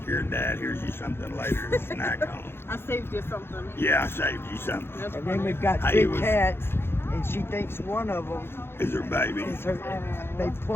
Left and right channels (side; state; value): right; late; 0.11 ms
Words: your dad. Here's you something later to snack on. I saved you something. Yeah, I saved you something. That's And then funny. we've got Hey, two was- cats, and she thinks one of them Is her baby? is her. They